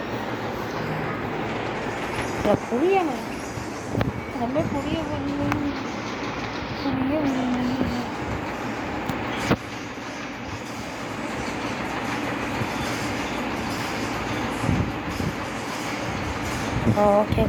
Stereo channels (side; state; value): both; identical; correlation 1.00